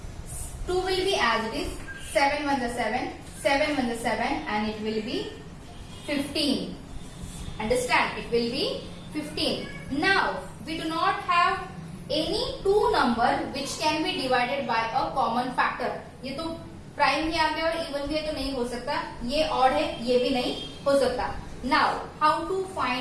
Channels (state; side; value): identical; both; correlation 1.00